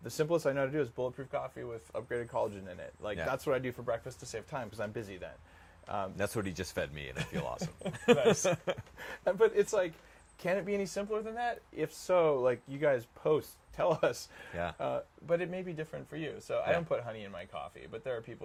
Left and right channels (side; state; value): both; identical; correlation 1.00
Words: the simplest I know how to do is bulletproof coffee with upgraded collagen in it. Like that's what I do for breakfast to save time because I'm busy then. That's what he just fed me, and I feel awesome. Nice. But it's like, can it be any simpler than that? If so, like you guys post, tell us. Yeah. But it may be different for you. So I don't put honey in my coffee, but there are